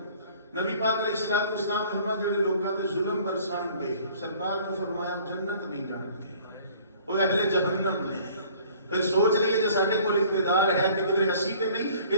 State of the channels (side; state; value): both; inverted; correlation -0.53